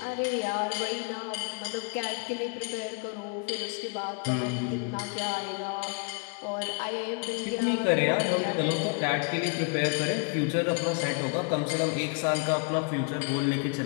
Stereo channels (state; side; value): quieter; right; 37.0 dB